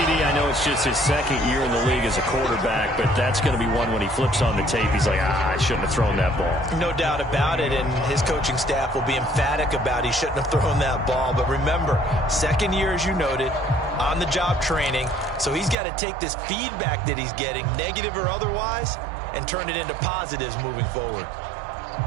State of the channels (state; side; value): drops out; left; at 15.8 s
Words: I know it's just his 2nd year in the league as a quarterback, but that's going to be one when he flips on the tape. He's like, I shouldn't have thrown that ball. No doubt about it, and his coaching staff will be emphatic about he shouldn't have thrown that ball. But remember, 2nd year, as you noted, on-the-job training, so he's got to take this feedback that he's getting, negative or otherwise, and turn it into positives moving forward.